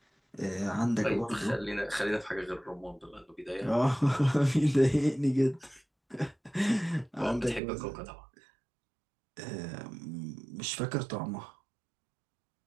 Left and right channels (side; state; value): left; drops out; at 7.6 s